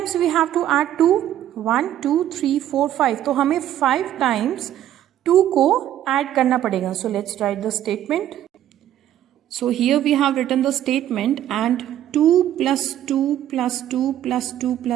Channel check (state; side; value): quieter; left; 11.8 dB